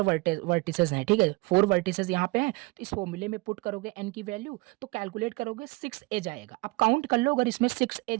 वर्टिसेस हैं, ठीक है, 4 वर्टिसेस यहाँ पे हैं, तो इस फॉर्मूले में पुट करोगे n की वैल्यू, तो कैलकुलेट करोगे 6 एज आएगा। अब काउंट कर लो, अगर इसमें 6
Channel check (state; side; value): quieter; left; 24.0 dB